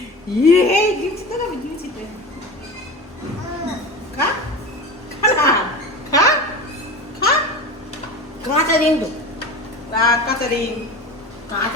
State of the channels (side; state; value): both; normal; correlation 0.30